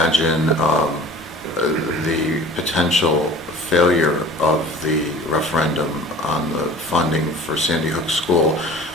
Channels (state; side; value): normal; both; correlation 0.44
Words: the potential failure of the referendum on the funding for Sandy Hook School